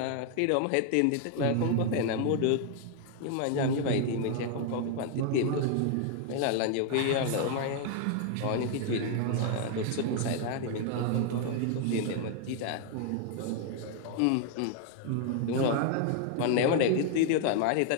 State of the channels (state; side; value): different; both; correlation 0.00